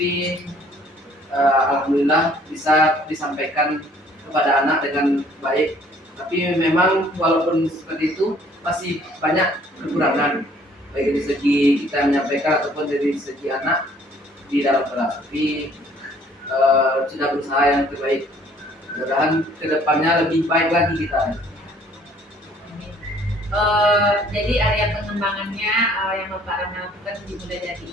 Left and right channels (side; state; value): both; normal; correlation 0.58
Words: alhamdulillah bisa disampaikan kepada anak dengan baik. Tapi memang walaupun seperti itu masih banyak kekurangan baik dari segi kita menyampaikan ataupun dari segi anak di dalam kelas. Tapi sudah berusaha yang terbaik. Mudah-mudahan kedepannya lebih baik lagi kita. Jadi area pengembangannya yang Bapak Rama lakukan dimulai dari